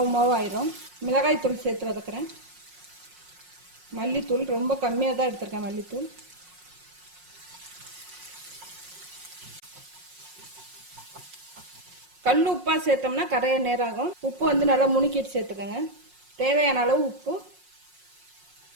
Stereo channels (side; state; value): left; late; 5.5 ms